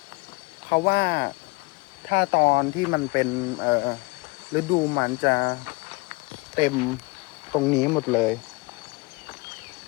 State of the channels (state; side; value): quieter; right; 26.1 dB